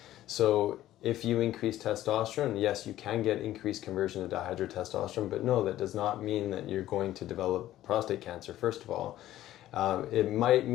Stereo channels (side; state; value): right; quieter; 13.8 dB